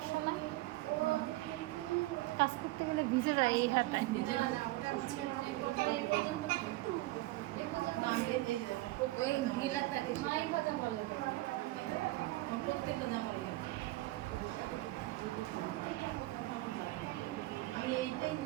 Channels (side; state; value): left; quieter; 18.9 dB